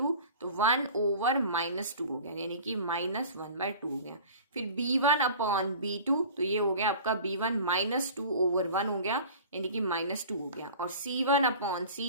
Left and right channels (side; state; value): both; inverted; correlation -0.41